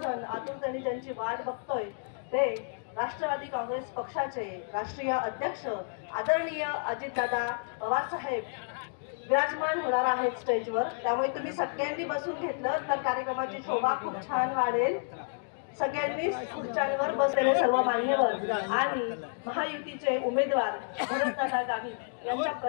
आतुरतेने ज्यांची वाट बघतोय ते राष्ट्रवादी काँग्रेस पक्षाचे राष्ट्रीय अध्यक्ष आदरणीय अजितदादा पवार साहेब विराजमान होणार आहेत स्टेजवर. त्यामुळे तुम्ही सगळ्यांनी बसून घेतलं तर कार्यक्रमाची शोभा खूप छान वाढेल. सगळ्यांनी खुर्च्यांवर बसलेले सर्व मान्यवर आणि महायुतीचे उमेदवार भरतदादा गावित यांच्या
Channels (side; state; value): right; silent; digital silence